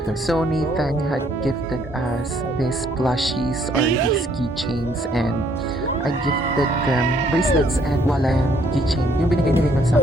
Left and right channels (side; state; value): both; normal; correlation 0.66